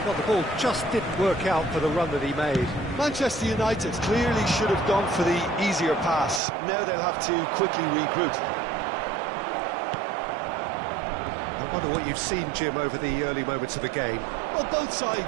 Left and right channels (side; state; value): left; drops out; at 6.4 s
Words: Well, the ball just didn't work out for the run that he made. Manchester United clearly should have gone for the easier pass. Now they'll have to quickly regroup. I wonder what you've seen, Jim, over the early moments of the game. Well, both